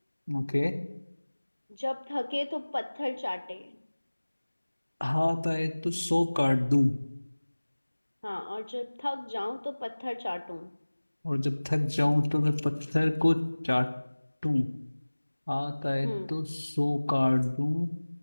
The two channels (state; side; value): inverted; both; correlation -1.00